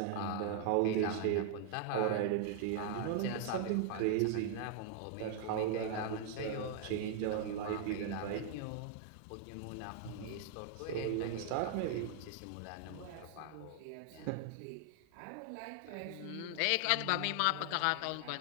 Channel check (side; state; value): both; different; correlation 0.00